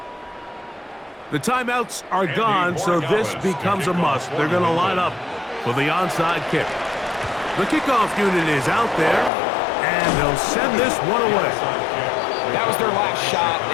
boys. The timeouts are gone, so this becomes a must. They're going to line up for the onside kick. The kickoff unit is out there, and they'll send this one away. That was their last shot.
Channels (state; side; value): drops out; right; at 9.3 s